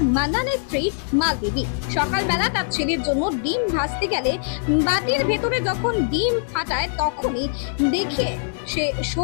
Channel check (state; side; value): silent; right; digital silence